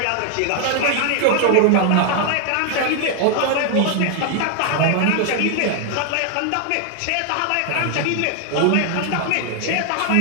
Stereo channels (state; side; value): different; both; correlation 0.00